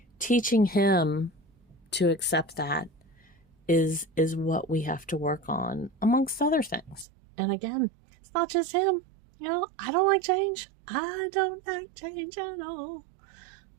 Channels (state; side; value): drops out; left; at 7.1 s